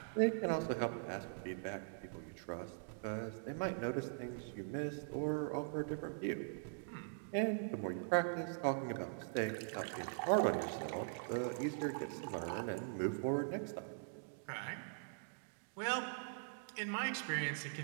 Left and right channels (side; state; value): left; silent; digital silence